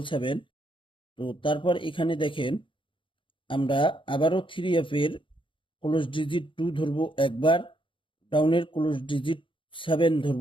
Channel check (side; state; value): right; late; 0.25 ms